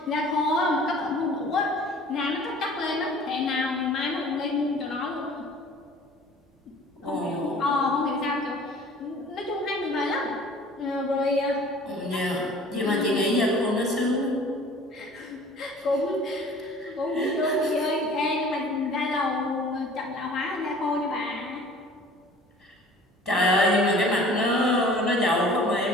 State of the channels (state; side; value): normal; both; correlation 0.48